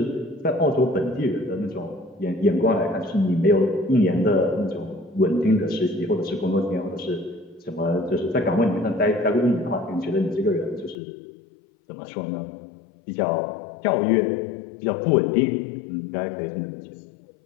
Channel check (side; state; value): right; drops out; at 11.0 s